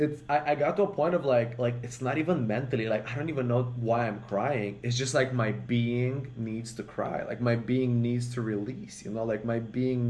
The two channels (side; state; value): both; identical; correlation 1.00